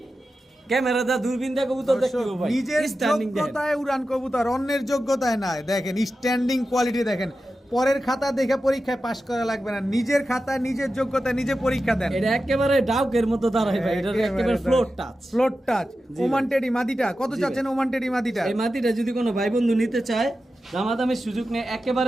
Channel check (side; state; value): both; normal; correlation 0.92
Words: ক্যামেরা দা দূরবীন দা কবুতর দেখতে দর্শক, হবে ভাই, নিজের স্ট্যান্ডিং দেখেন। যোগ্যতায় উড়ান কবুতর, অন্যের যোগ্যতায় না। দেখেন স্ট্যান্ডিং কোয়ালিটি দেখেন, পরের খাতা দেখে পরীক্ষায় পাশ করা লাগবে না, নিজের খাতা, নিজের যোগ্যতা, নিজে পরীক্ষা দেন। এটা একেবারে ডাউকের মতো দাঁড়ায় ভাই, এটা একেবারে ফ্লোর টাচ। Floor touch. জি ওমান ভাই। টেডি মাদিটা কত জি চাচ্ছেন? ওমান টেডি মাদিটা? এই মাটিটা যদি কোনো ভাই বন্ধু নিতে চায়, দামাদামের সুযোগ নেই,